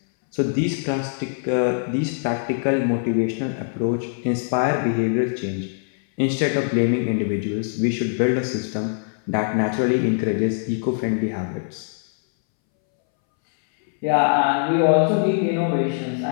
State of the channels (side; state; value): right; silent; 63 dB below the other